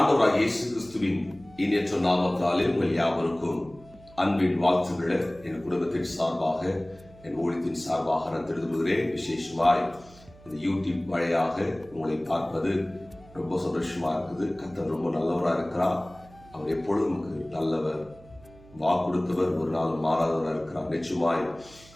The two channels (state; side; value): noise; right; hum, 23 dB below the sound